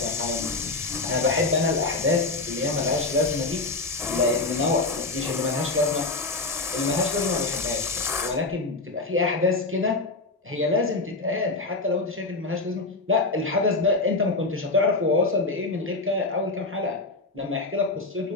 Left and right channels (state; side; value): quieter; right; 3.4 dB